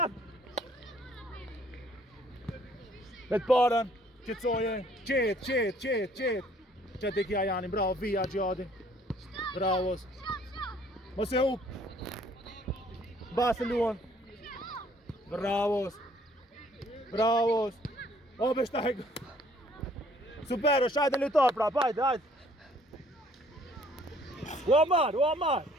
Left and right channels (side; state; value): both; normal; correlation 0.60